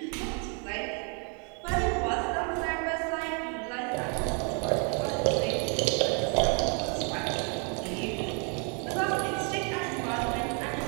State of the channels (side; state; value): left; quieter; 37.6 dB